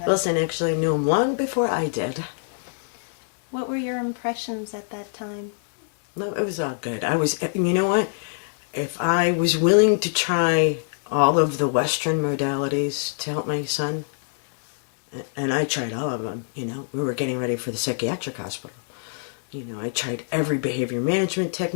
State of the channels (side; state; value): right; silent; digital silence